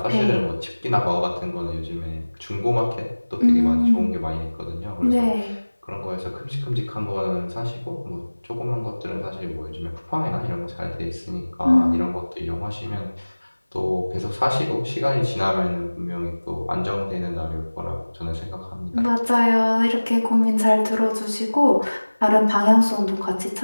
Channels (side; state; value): both; inverted; correlation -1.00